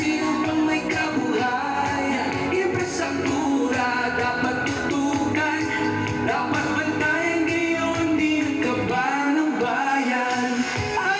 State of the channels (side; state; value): both; identical; correlation 1.00